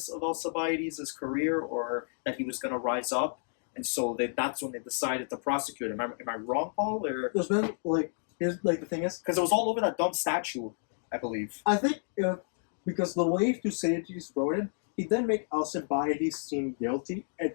of Alcibiades' career, or that he was going to rise up, and so that's when they decided to prosecute him. Am I wrong, Paul? Or There's been here's the thing is, because it was all over that dumb statue, I believe. I think because the way Thucydides wrote it, he didn't make Alcibiades seem guilty.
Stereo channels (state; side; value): silent; right; digital silence